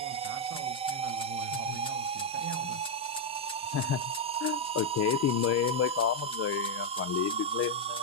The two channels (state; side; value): normal; both; correlation 0.00